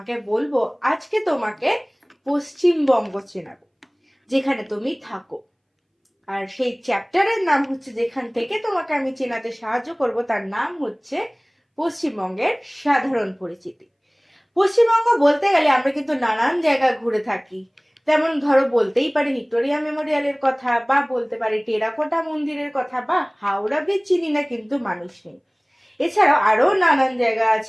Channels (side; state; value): both; identical; correlation 1.00